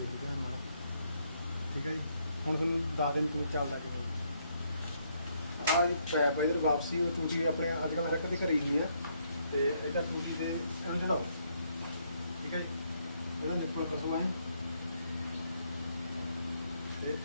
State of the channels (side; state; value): both; inverted; correlation -0.73